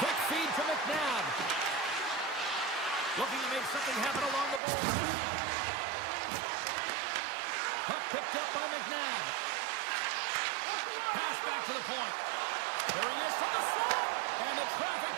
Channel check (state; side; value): drops out; left; at 4.6 s